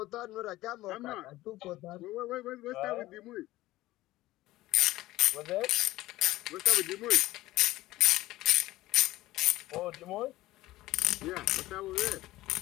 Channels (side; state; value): right; quieter; 17.1 dB